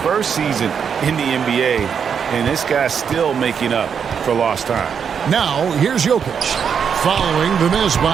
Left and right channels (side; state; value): left; quieter; 7.1 dB